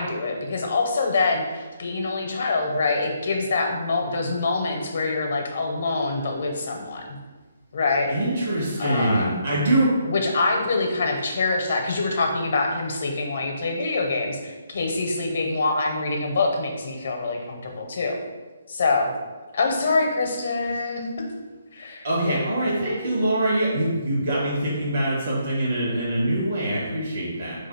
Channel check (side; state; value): both; inverted; correlation -0.75